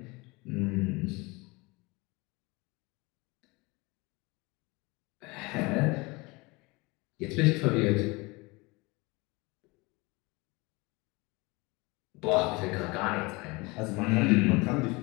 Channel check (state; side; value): quieter; right; 25.2 dB